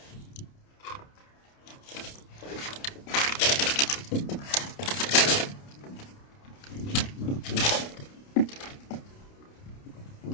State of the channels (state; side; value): late; right; 29 ms